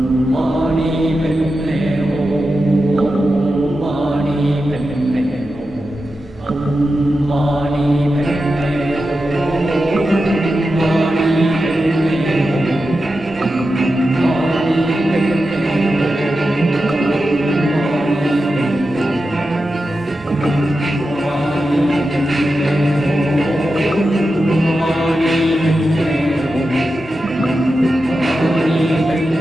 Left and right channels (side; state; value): both; normal; correlation 0.91